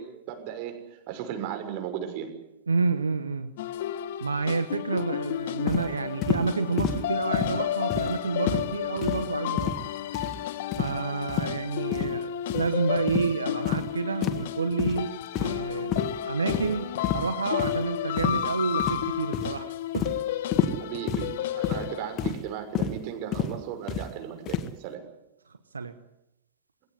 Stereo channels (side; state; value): both; inverted; correlation -0.41